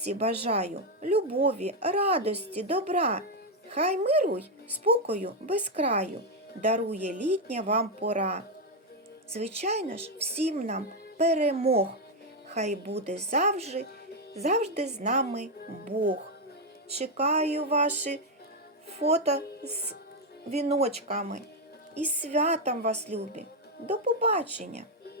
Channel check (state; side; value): normal; both; correlation 0.03